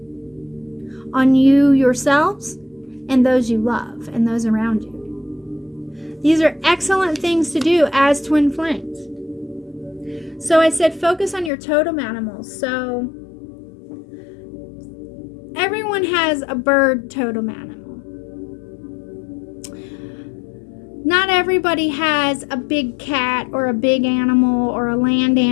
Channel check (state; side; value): drops out; right; at 11.5 s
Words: on you yourselves and those you love and those around you. These are excellent things to do as twin flames. So I said focus on your totem animals. So everyone has a bird totem animal. Not everybody has a big cat or a big animal or a land